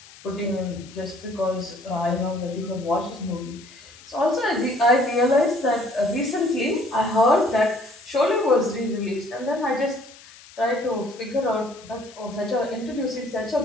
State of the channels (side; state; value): left; noise; hiss, 21 dB below the sound